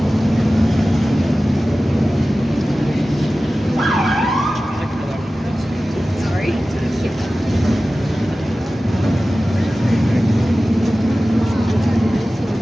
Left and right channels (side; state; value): both; normal; correlation 0.96